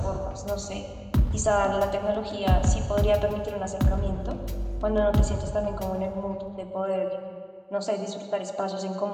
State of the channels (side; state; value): both; identical; correlation 1.00